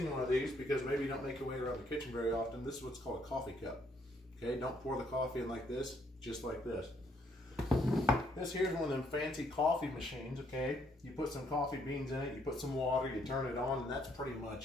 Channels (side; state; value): both; normal; correlation 0.69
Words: one of these, because maybe you don't make your way around the kitchen very often, this is what's called a coffee cup. Okay, don't pour the coffee in like this, just like this. This here's one of them fancy coffee machines, okay? You put some coffee beans in it, you put some water, you turn it on, and that's pretty